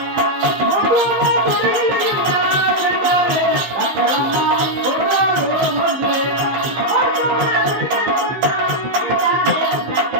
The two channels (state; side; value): late; left; 15 ms